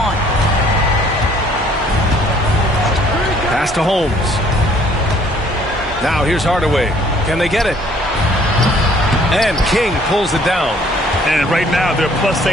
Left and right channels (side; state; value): both; normal; correlation 0.59